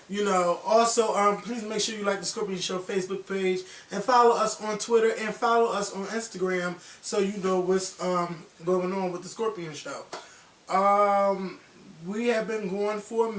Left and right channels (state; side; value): identical; both; correlation 1.00